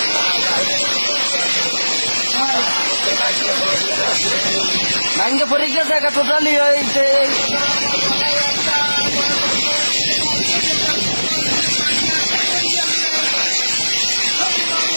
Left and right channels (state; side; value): inverted; both; correlation -1.00